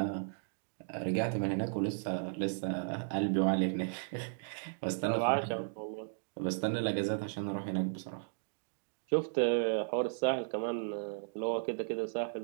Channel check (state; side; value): silent; left; digital silence